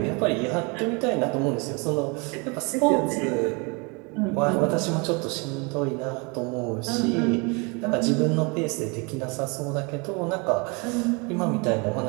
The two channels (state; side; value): quieter; left; 29.9 dB